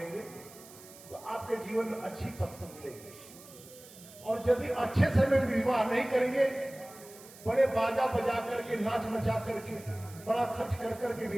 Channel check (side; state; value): right; noise; hiss, 19 dB below the sound